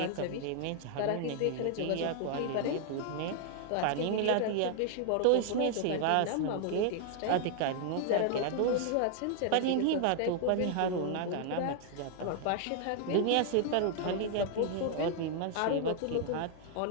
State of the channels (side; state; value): both; different; correlation -0.01